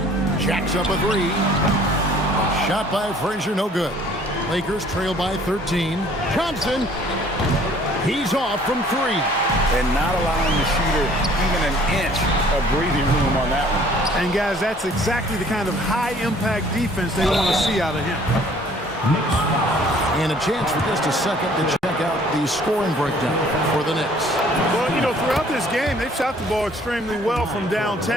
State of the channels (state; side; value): normal; both; correlation 0.56